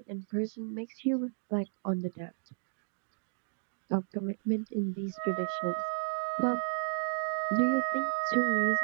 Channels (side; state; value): left; silent; digital silence